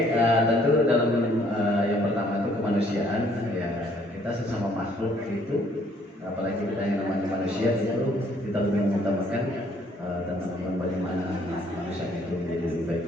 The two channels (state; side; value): normal; both; correlation 0.63